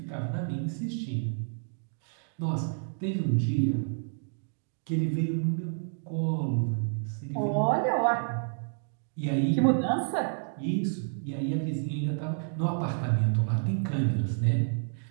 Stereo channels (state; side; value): silent; left; digital silence